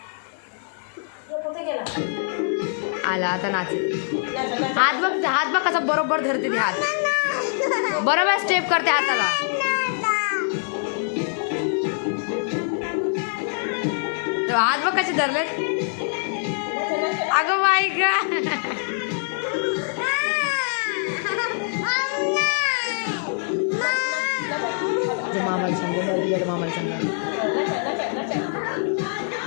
आला आता नाचेल. हात बघ कसा बरोबर धरते ती. हात बरोबर स्टेप करते हाताला. हात बघ कसे धरलेत. अगं बाई ग. मामाला सांग, मामाला सांग.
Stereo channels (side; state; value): right; silent; digital silence